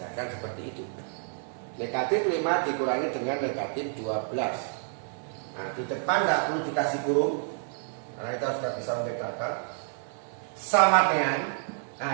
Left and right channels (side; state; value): left; silent; 58 dB below the other